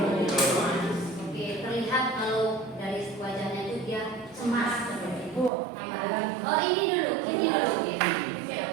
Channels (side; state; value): left; drops out; at 5.5 s